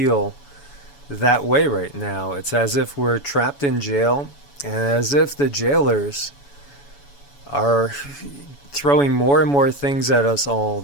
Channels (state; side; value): late; right; 7.1 ms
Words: that way right now. It's as if we're trapped in jail, and as if the jailers are throwing more and more things at us all